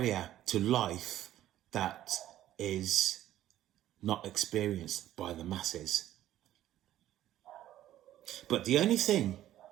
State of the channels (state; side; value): quieter; left; 13.0 dB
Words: to life that is not experienced by the masses. But the only thing